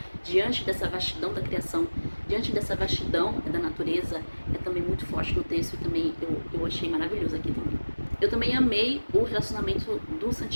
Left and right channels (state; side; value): inverted; both; correlation -1.00